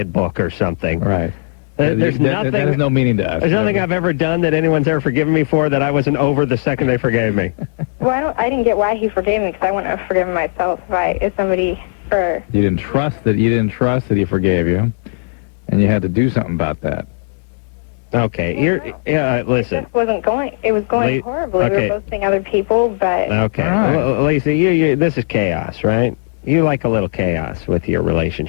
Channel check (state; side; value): silent; right; digital silence